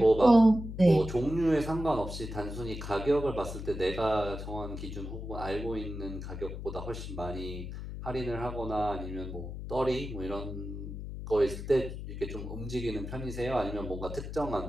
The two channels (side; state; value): left; noise; hum, 8 dB below the sound